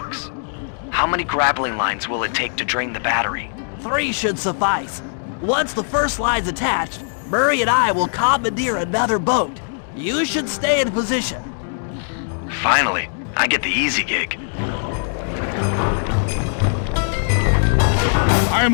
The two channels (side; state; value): right; silent; digital silence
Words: How many grappling lines will it take to drain the battery? 3 should suffice. Once the first line's attached, Murray and I will commandeer another boat. You should stay in position. Finally, I get the easy gig.